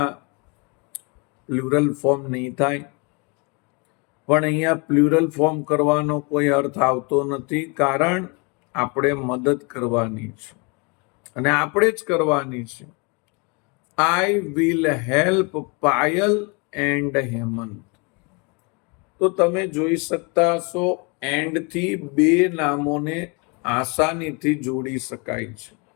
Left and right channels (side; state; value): right; quieter; 31.4 dB